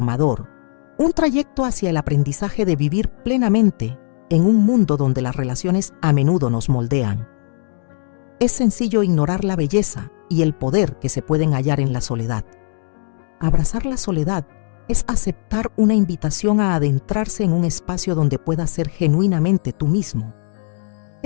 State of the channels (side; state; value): right; silent; 66 dB below the other